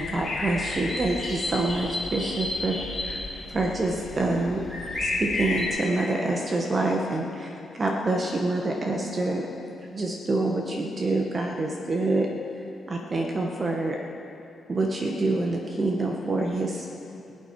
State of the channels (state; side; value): normal; both; correlation 0.83